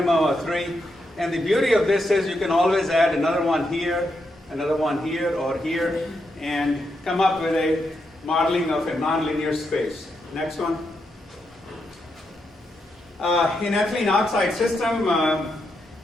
of 3. And the beauty of this is you can always add another one here, or here, and come up with a modeling of a nonlinear space. Next one. In ethylene oxide system,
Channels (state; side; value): normal; both; correlation 0.83